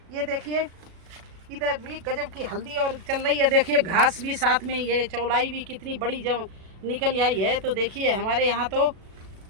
ये देखिए इधर भी गजब की हल्दी और चल रही है। देखिए घास भी साथ में, ये चौलाई भी कितनी बड़ी जब निकल आई है। तो देखिए हमारे यहाँ तो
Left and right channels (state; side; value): late; left; 36 ms